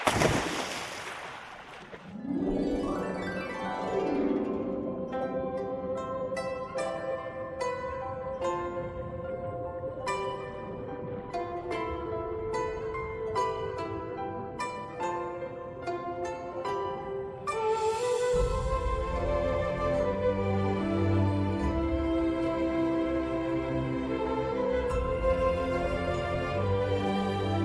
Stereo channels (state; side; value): identical; both; correlation 1.00